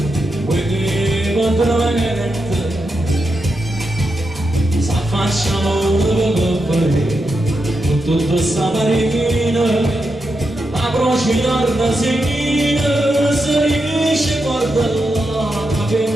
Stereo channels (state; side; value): normal; both; correlation 0.86